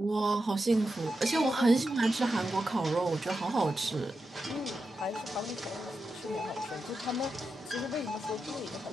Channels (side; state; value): both; normal; correlation 0.89